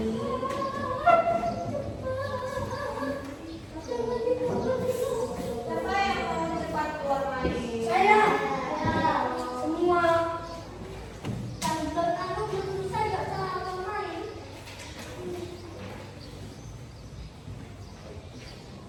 Siapa yang mau cepat keluar main? Saya. Semua. Kalau kamu belum bisa nggak salah main.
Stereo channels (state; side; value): identical; both; correlation 1.00